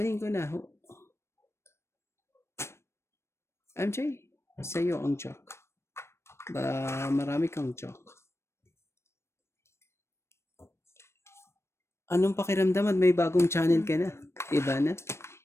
ko na ho. MJ, sa'yo ang joke. Marami kang joke. Anong pakiramdam at may bagong channel ka na? Iba na?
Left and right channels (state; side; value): late; right; 0.13 ms